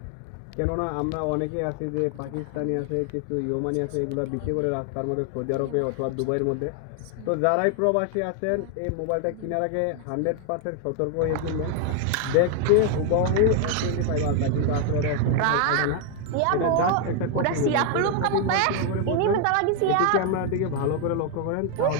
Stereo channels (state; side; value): different; both; correlation 0.01